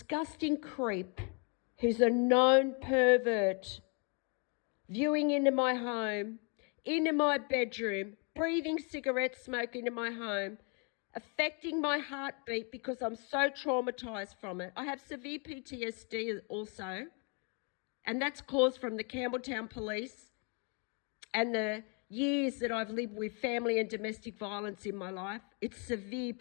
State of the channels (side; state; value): right; quieter; 36.6 dB